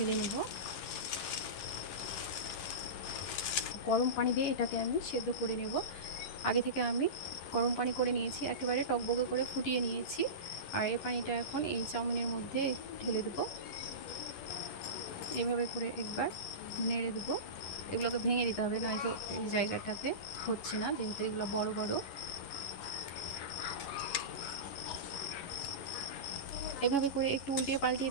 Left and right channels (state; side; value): late; right; 11 ms